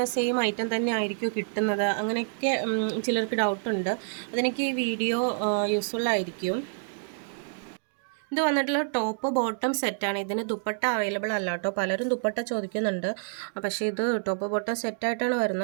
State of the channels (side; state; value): left; silent; digital silence